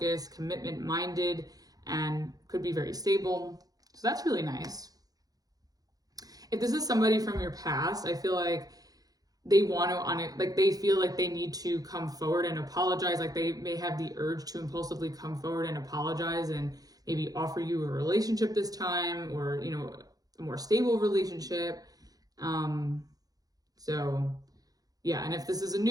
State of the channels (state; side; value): late; left; 0.18 ms